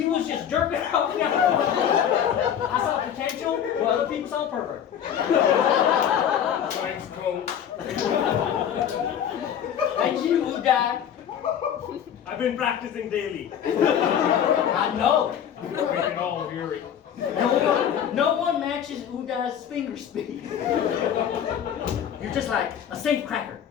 was just jerking off. I saw potential where other people saw pervert. Thanks, coach. And you, who died? I've been practicing daily. I know. We can all hear it. No one matches Udai's finger speed. You're just like a safe cracker.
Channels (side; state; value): right; quieter; 9.2 dB